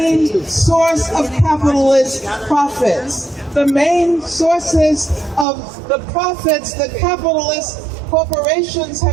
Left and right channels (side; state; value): left; drops out; at 5.5 s